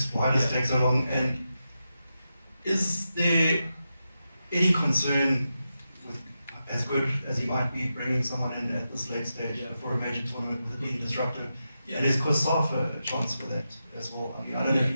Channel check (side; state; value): both; inverted; correlation -0.89